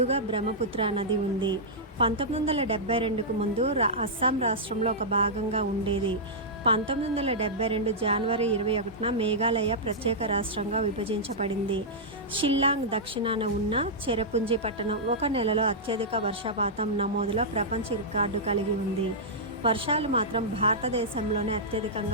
బ్రహ్మపుత్ర నది ఉంది. 1972కు ముందు అస్సాం రాష్ట్రంలో ఒక భాగంగా ఉండేది. 1972 జనవరి 21న మేఘాలయ ప్రత్యేక రాష్ట్రంగా విభజించబడింది. షిల్లాంగ్ దక్షిణాన ఉన్న చెరపుంజి పట్టణం ఒక నెలలో అత్యధిక వర్షపాతం నమోదులో ప్రపంచ రికార్డు కలిగి ఉంది. వర్షాలు మాత్రం భారతదేశంలోనే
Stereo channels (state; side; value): normal; both; correlation -0.11